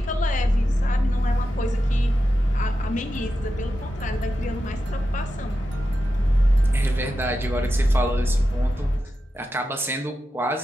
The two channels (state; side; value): normal; both; correlation 0.90